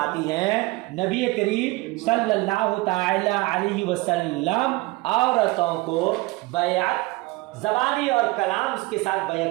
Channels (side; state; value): left; quieter; 22.1 dB